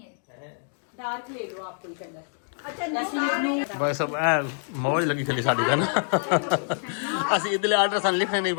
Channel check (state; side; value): silent; right; digital silence